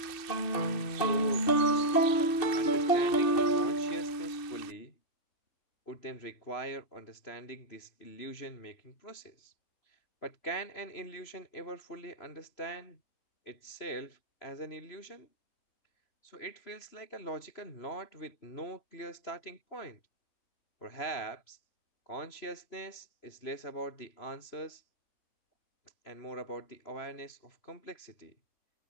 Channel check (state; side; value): late; right; 2.7 ms